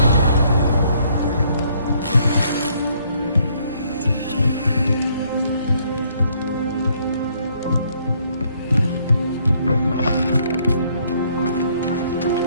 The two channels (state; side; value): inverted; both; correlation -0.67